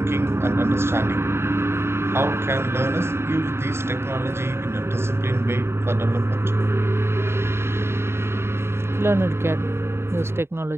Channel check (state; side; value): late; left; 0.12 ms